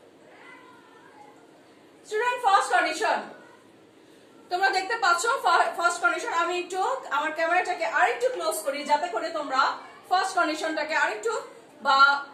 Student, first condition তোমরা দেখতে পাচ্ছ first condition. আমি একটু আমার ক্যামেরাটাকে আরেকটু close করি যাতে করে তোমরা ফার্স্ট কন্ডিশনটাকে আরেকটু বা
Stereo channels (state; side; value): identical; both; correlation 1.00